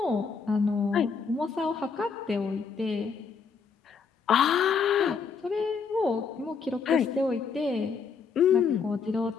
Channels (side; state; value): right; quieter; 5.6 dB